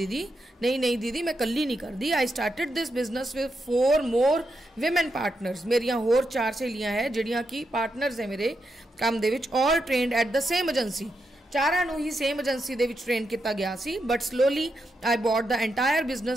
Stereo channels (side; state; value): both; normal; correlation 0.84